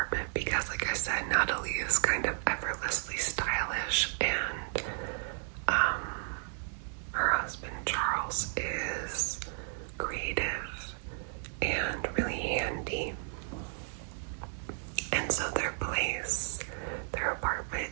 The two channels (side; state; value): left; silent; 56 dB below the other